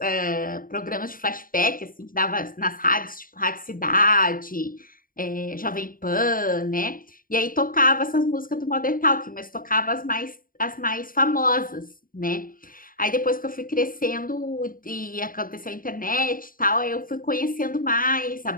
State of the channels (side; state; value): right; late; 0.41 ms